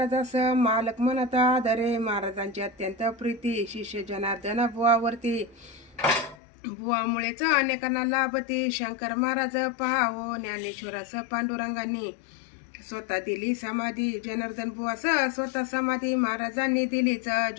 मालक म्हणत आदरे. महाराजांची अत्यंत प्रीती. शिष्य जनार्दन बुवावरती. बुवामुळेच अनेकांना लाभती. शंकर महाराज पहावो. ज्ञानेश्वरास पांडुरंगांनी स्वतः दिली समाधी. जनार्दन बुवास स्वतः समाधी महाराजांनी दिलीच.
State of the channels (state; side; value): drops out; right; at 6.4 s